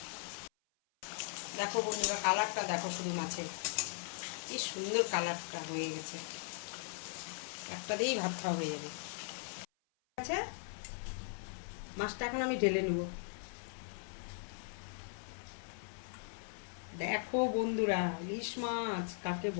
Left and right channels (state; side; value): silent; right; 52 dB below the other